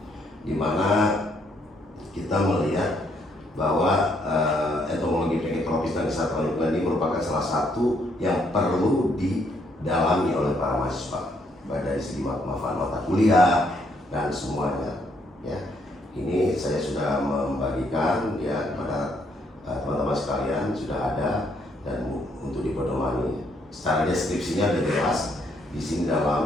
di mana kita melihat bahwa entomologi penyakit tropis dan kesehatan lingkungan ini merupakan salah satu yang perlu didalami oleh para mahasiswa dari segi manfaat mata kuliah dan semuanya ya. Ini saya sudah membagikan ya kepada teman-teman sekalian, sudah ada dan untuk dipedomani. Secara deskripsinya sudah jelas di sini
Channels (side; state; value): both; normal; correlation 0.71